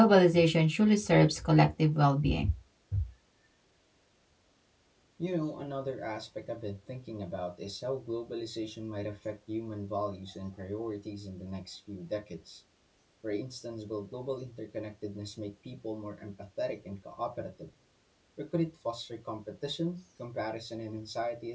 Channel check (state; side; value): identical; both; correlation 1.00